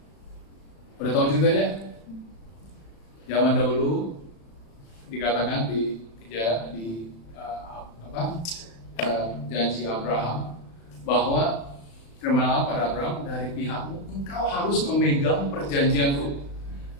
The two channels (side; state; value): right; late; 35 ms